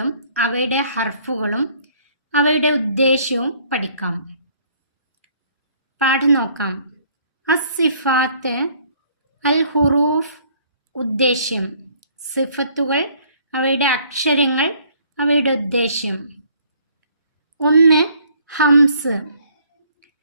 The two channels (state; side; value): inverted; both; correlation -0.61